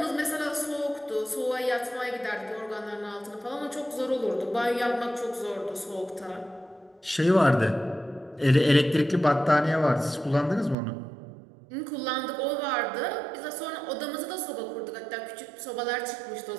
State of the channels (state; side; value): drops out; left; at 10.8 s